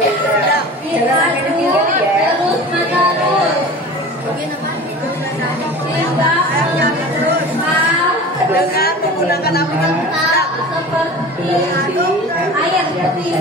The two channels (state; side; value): normal; both; correlation 0.37